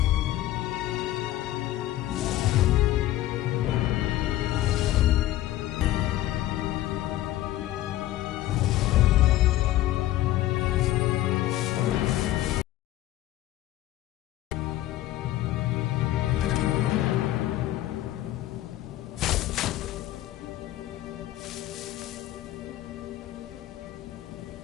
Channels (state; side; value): quieter; right; 14.8 dB